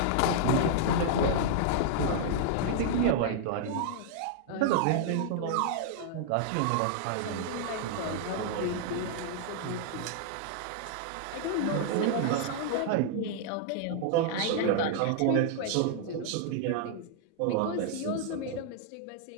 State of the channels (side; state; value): both; different; correlation -0.01